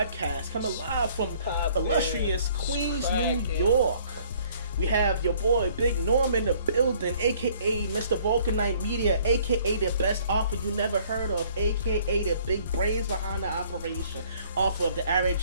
coming live from illustrious Queens, New York. We have your boy Big Norm in the building, aka Mr. Vulcanite Media, aka the best offer you never heard of, aka the big brains behind the operation, author of the Aaron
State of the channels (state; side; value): inverted; both; correlation -0.58